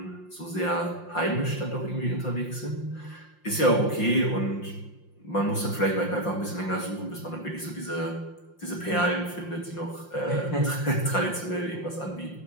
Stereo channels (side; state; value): right; late; 5.7 ms